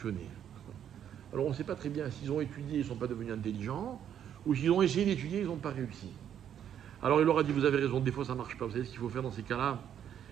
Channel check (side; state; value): left; quieter; 9.5 dB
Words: Alors on ne sait pas très bien s'ils ont étudié, ils ne sont pas devenus intelligents, ou s'ils ont essayé d'étudier, ils n'ont pas réussi. Alors il leur a dit, vous avez raison, des fois ça ne marche pas. Vous savez ce qu'il faut faire dans ces cas-là?